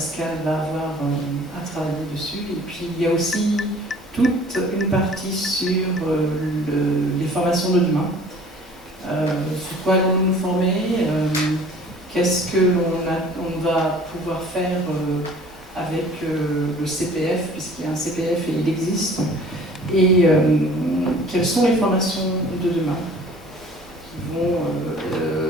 va avoir à travailler dessus. Et puis, il y a aussi toute une partie sur les formations de demain. Sur quoi allons-nous nous former, qu'est-ce que on va pouvoir faire avec le CPF, puisqu'il y a un CPF et il existe, et quelles sont les formations de demain qui vont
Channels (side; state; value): both; normal; correlation 0.50